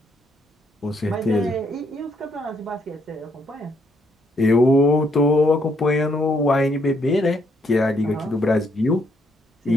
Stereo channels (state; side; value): normal; both; correlation 0.73